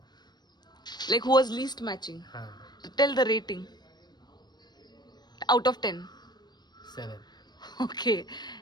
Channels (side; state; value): right; late; 0.20 ms